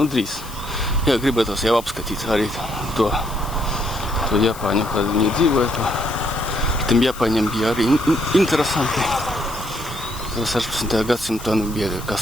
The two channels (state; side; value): noise; left; hiss, 16 dB below the sound